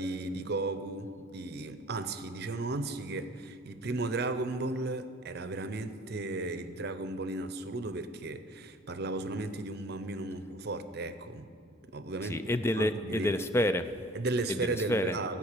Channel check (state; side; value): normal; both; correlation 0.49